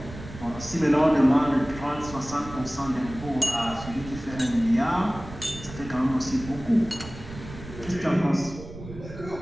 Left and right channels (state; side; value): noise; right; rumble, 14 dB below the sound